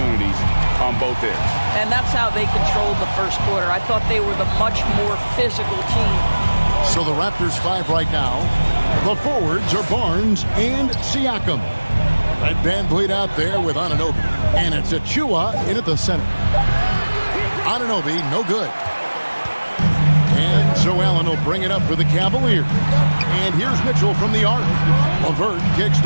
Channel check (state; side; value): inverted; both; correlation -1.00